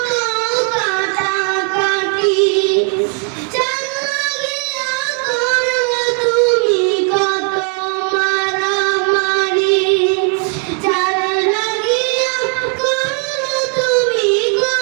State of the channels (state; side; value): quieter; left; 38.2 dB